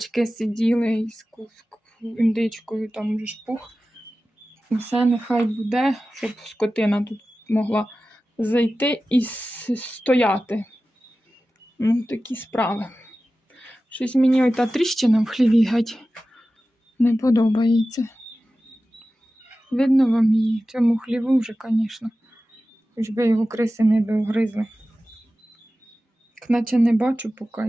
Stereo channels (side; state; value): both; normal; correlation 0.95